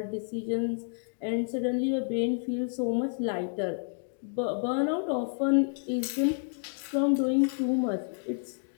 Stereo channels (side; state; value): right; silent; digital silence